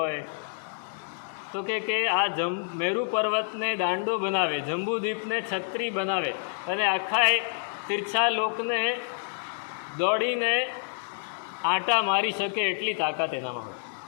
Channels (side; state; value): right; silent; 59 dB below the other